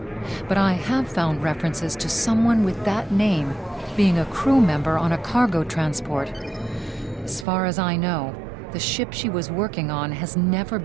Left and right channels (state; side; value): drops out; left; at 7.5 s